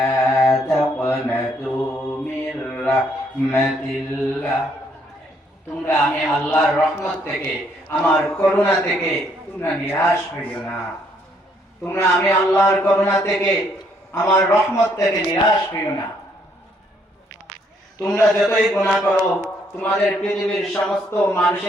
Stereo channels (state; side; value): normal; both; correlation 0.69